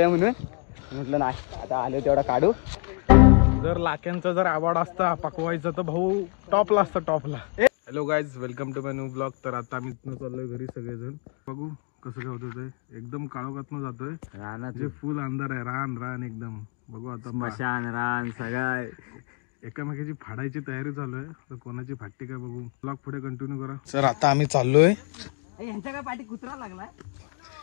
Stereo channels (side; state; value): right; quieter; 34.1 dB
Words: म्हणून म्हटलं नाही आता आलो तेवढा काढू. जर लाक्यांचा जर आवड असता पकवायचा तर भाऊ टॉपला असतं टॉपला. Hello guys, welcome to my new blog. तर आता आम्ही इथनं चाललोय घरी सगळेजण. बघू कसं काय होतं ते. एकदम काळोखातनं जातोय. रानाचे फुल अंधार आहे. रान एकदम. बघू आता मशान रान सगळं एकामेकाची फाडायची तयारी चालू आहे. तर कोणाची फाटते काय बघू. ब्लॉग पुढे कंटिन्यू करा. सर आता आम्ही चाललोय. यांच्या काय पाठी कुत्रा लागलाय